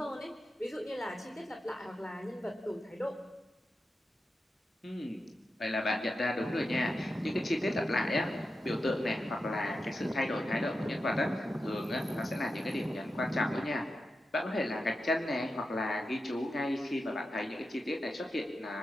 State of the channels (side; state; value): both; normal; correlation 0.90